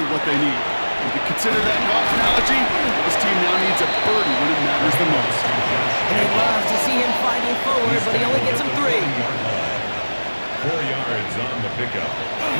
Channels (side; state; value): both; inverted; correlation -1.00